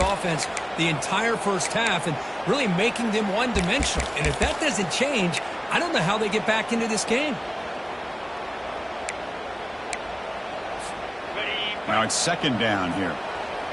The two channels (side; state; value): both; identical; correlation 1.00